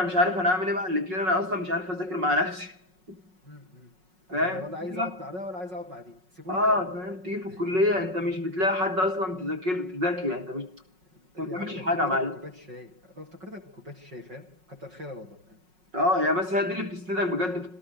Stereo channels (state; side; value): late; left; 5.4 ms